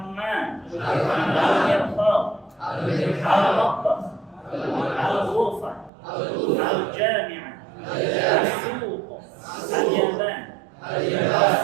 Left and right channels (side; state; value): left; drops out; at 5.9 s